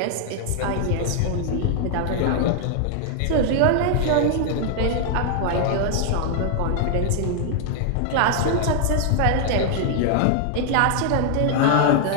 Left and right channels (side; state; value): both; different; correlation 0.00